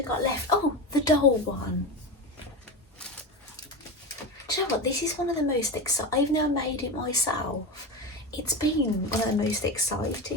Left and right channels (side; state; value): both; normal; correlation 0.21